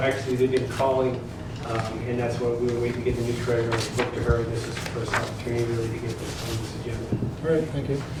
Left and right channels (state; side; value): identical; both; correlation 1.00